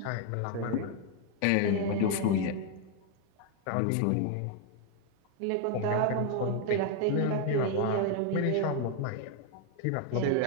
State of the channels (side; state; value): both; different; correlation 0.00